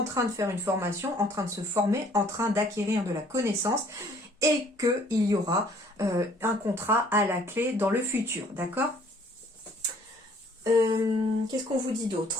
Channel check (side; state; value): both; normal; correlation 0.58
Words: train de faire une formation, en train de se former, en train d'acquérir de la connaissance et qu'il y aura un contrat à la clé dans le futur. D'accord? Qu'est-ce qu'on vous dit